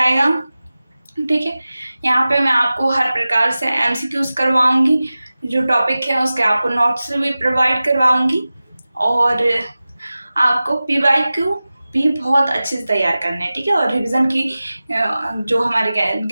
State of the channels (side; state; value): both; inverted; correlation -0.96